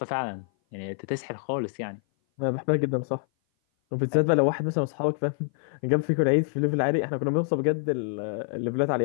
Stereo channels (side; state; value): right; silent; 56 dB below the other